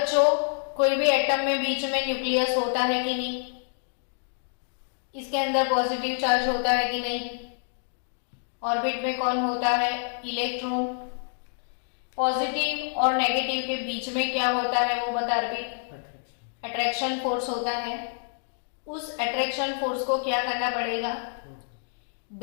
कोई भी एटम में बीच में न्यूक्लियस होता है कि नहीं? इसके अंदर पॉजिटिव चार्ज होता है कि नहीं? ऑर्बिट में कौन होता है? इलेक्ट्रॉन। पॉजिटिव और नेगेटिव के बीच में क्या होता है वो बता अर्पित? अट्रैक्शन फोर्स होता है। उस अट्रैक्शन फोर्स को क्या करना पड़ेगा?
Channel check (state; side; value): silent; right; 60 dB below the other